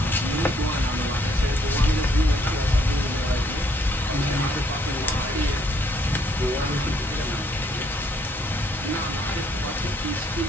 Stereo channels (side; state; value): both; normal; correlation 0.67